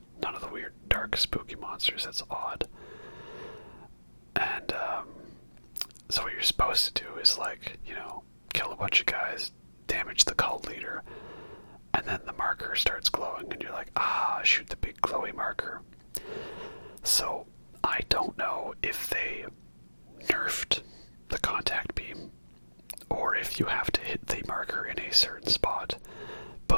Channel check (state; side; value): inverted; both; correlation -1.00